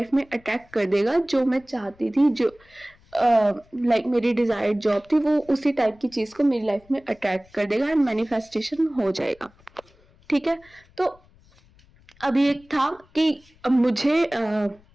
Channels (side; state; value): left; noise; rumble, 30 dB below the sound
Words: में अटैक कर देगा जो मैं चाहती थी, जो लाइक मेरी डिजायर्ड जॉब थी, वो उसी टाइप की चीज को मेरी लाइफ में अट्रैक्ट कर देगा एंड मैनिफेस्टेशन हो जाएगा, ठीक है। तो अभी एक था कि मुझे